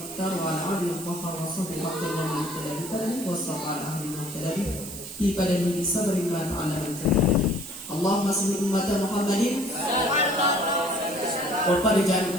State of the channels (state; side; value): noise; right; hiss, 12 dB below the sound